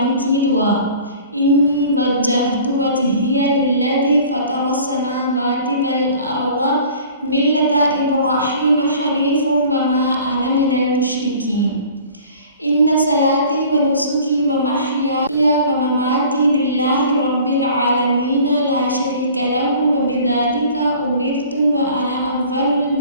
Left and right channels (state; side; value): inverted; both; correlation -0.47